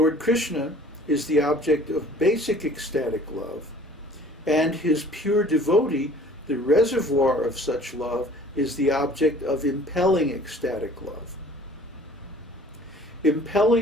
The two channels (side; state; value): both; normal; correlation 0.51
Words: Krishna is the object of basic ecstatic love, and his pure devotee, the reservoir of such love, is the object of impelling ecstatic love.